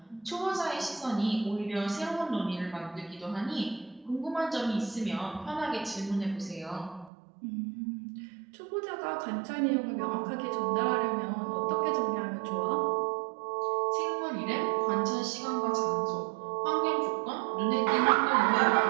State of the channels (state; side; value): drops out; left; at 7.1 s